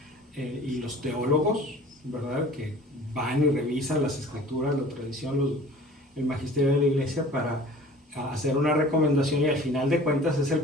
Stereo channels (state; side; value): normal; both; correlation 0.46